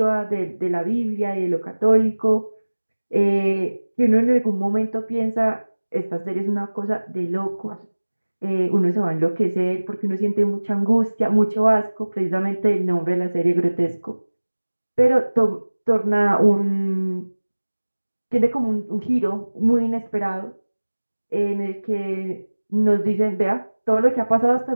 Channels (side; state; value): both; inverted; correlation -1.00